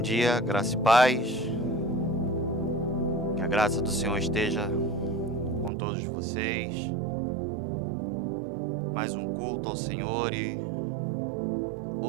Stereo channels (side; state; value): left; drops out; at 5.7 s